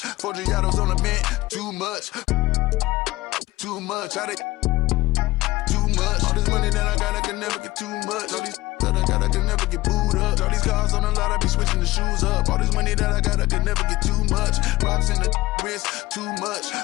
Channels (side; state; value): right; quieter; 18.7 dB